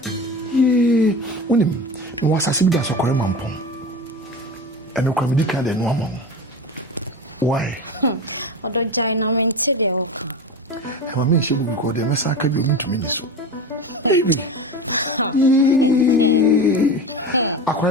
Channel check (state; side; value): normal; both; correlation 0.27